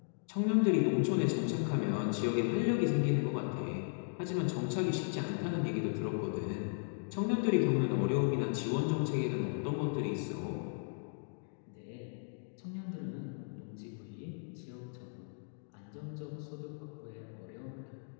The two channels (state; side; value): silent; right; digital silence